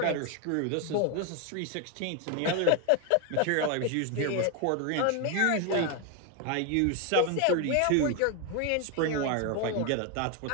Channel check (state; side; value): different; both; correlation 0.01